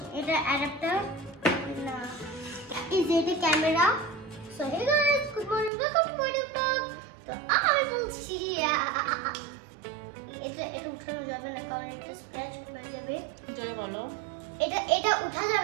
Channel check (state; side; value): drops out; left; at 5.7 s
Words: এটা অ্যাডাপ্টার না, এই যে এটা camera. So hey guys, good morning, welcome to my new blog. তো আমি বলছি এটা উঠানো যাবে না কারণ এটা স্ক্র্যাচ হয়ে যাবে। যাই বলো, এটা উঠা